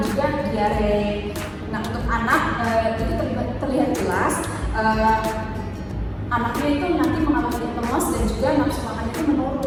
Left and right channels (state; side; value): identical; both; correlation 1.00